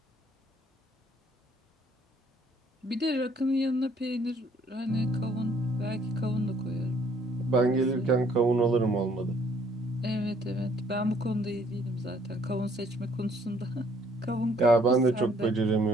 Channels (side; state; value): both; normal; correlation 0.62